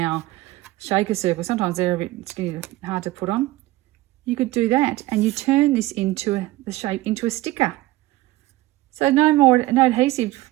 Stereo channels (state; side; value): quieter; left; 17.9 dB